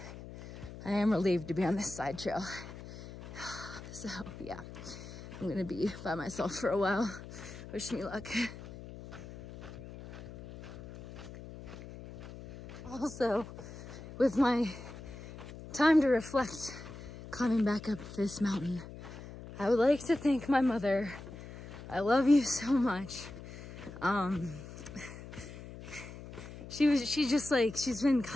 I am relieved to be on this side trail. So, yeah, I'm gonna be by myself for a while. Wish me luck. Also, with my time to reflect climbing back up this mountain, I would like to thank my mother. I love you so much. She's been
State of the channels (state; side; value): noise; left; hum, 13 dB below the sound